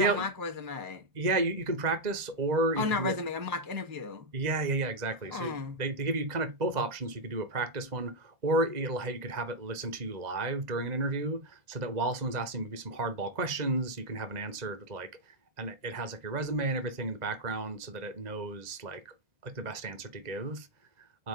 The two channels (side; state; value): left; late; 1.9 ms